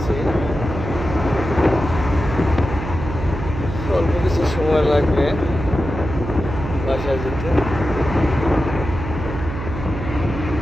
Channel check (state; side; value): noise; right; hum, 7 dB below the sound